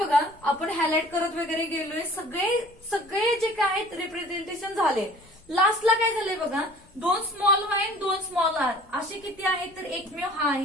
आपण हायलाइट करत वगैरे गेलोय, सगळे जे काय आहेत रिप्रेझेंटेशन झाले. लास्टला काय झालंय बघा 2 स्मॉल वाय 2 स्मॉल आर असे किती आहेत, तर एकमेव हा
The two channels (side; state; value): left; noise; rumble, 28 dB below the sound